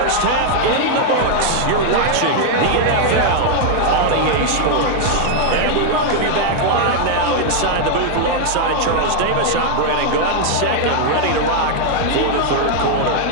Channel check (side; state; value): both; different; correlation 0.00